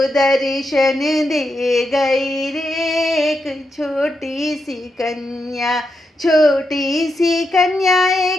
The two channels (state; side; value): normal; both; correlation 0.84